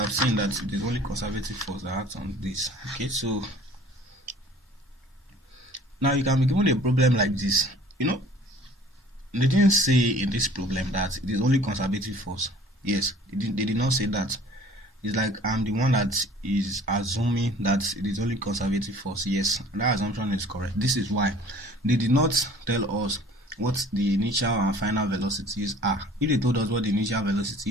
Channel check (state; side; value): normal; both; correlation 0.50